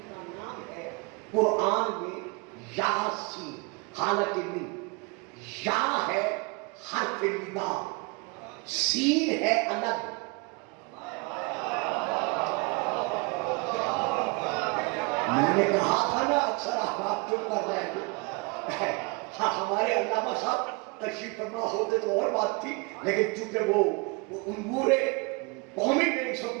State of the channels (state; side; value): quieter; left; 29.7 dB